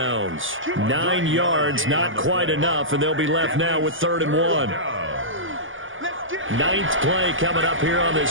9 yards, not quite enough, and they'll be left now with 3rd and 1. 9th play coming up here on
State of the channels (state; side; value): late; left; 0.58 ms